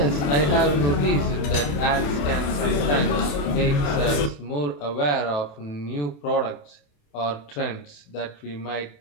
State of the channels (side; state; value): right; late; 28 ms